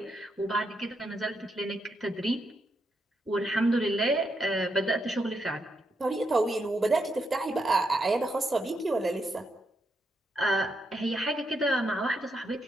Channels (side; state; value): both; normal; correlation 0.81